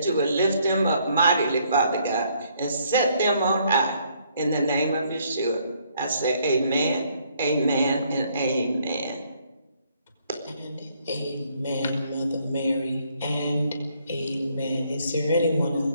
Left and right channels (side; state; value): both; inverted; correlation -0.68